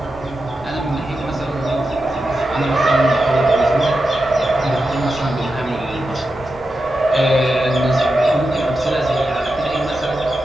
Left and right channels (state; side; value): normal; both; correlation 0.90